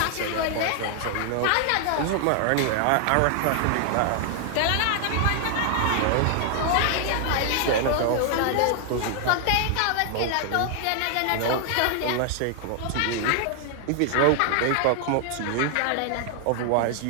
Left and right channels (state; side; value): different; both; correlation 0.00